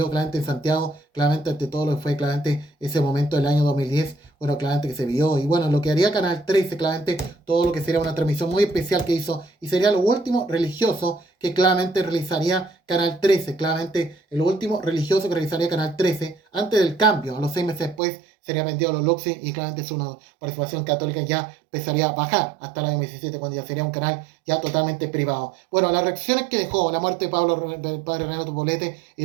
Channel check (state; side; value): drops out; left; at 18.0 s